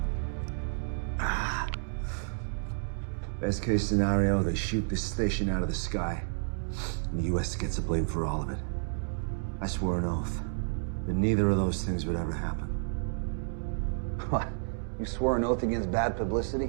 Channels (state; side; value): silent; left; digital silence